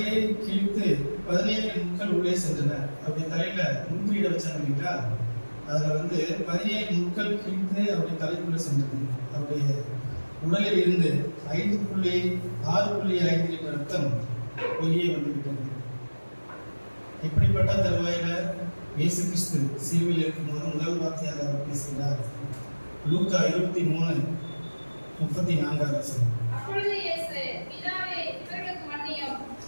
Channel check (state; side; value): inverted; both; correlation -1.00